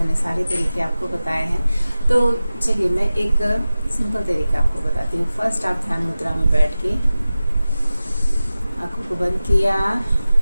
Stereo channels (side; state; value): both; inverted; correlation -0.95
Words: सारे तरीके आपको बताए हैं। तो चलिए मैं एक सिंपल तरीका आपको बताती हूँ। फर्स्ट आप ध्यान मुद्रा में बैठ के आंखों को बंद किया,